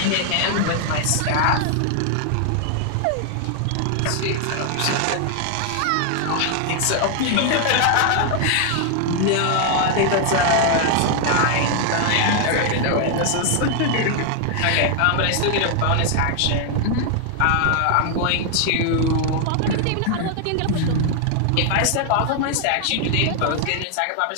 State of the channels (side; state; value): both; different; correlation 0.00